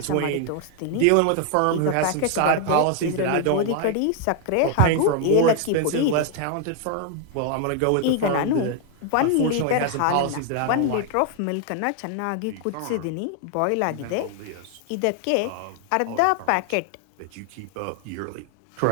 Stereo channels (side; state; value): both; different; correlation 0.00